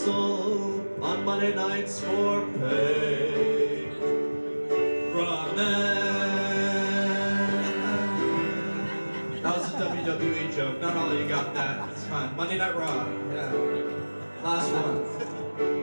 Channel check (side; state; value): both; inverted; correlation -1.00